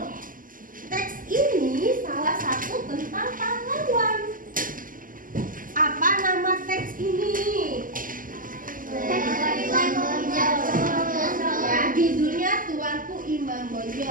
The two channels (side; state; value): left; late; 0.40 ms